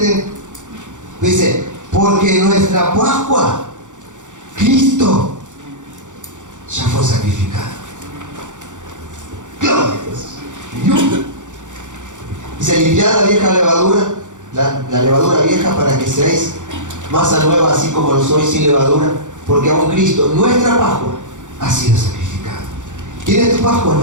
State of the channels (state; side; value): late; left; 0.86 ms